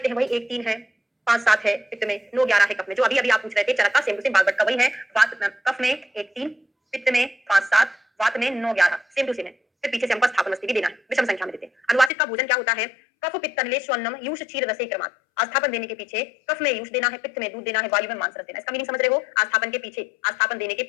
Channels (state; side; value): drops out; right; at 12.1 s